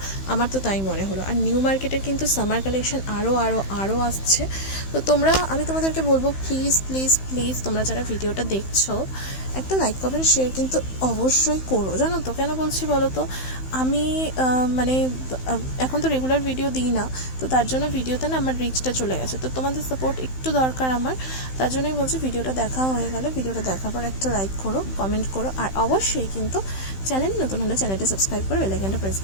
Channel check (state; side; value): late; right; 15 ms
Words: আমার তো তাই মনে হলো। আর নিউ মার্কেটের কিন্তু সামার কালেকশন আরও আসছে। তো তোমরা, আমি তোমাদেরকে বলবো প্লিজ প্লিজ প্লিজ তোমরা যারা ভিডিওটা দেখছো একটা লাইক কমেন্ট শেয়ার কিন্তু অবশ্যই করো, জানো তো কেন বলছি বলো তো। আমি মানে এখন তো রেগুলার ভিডিও দিই না, তো তার জন্য ভিডিওতে না আমার রিচটা চলে গেছে, তো তোমাদের সাপোর্ট একটু দরকার আমার। তার জন্যই বলছি ভিডিওটা দেখা হয়ে গেলে ভিডিওটা দেখার পর একটা লাইক করো, কমেন্ট করো, আর অবশ্যই কিন্তু চ্যানেল নতুন হলে চ্যানেলটি সাবস্ক্রাইব করে বেল আইকনটা প্রেস